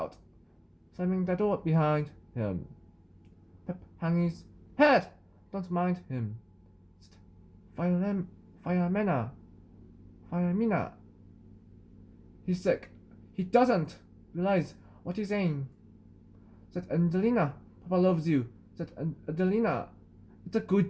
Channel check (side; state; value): both; identical; correlation 1.00